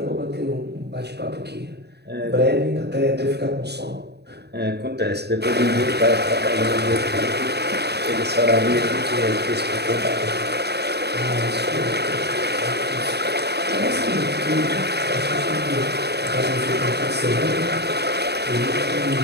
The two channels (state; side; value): late; left; 0.48 ms